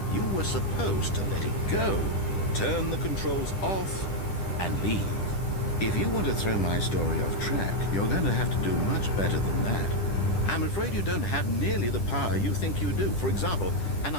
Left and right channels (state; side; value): late; right; 10 ms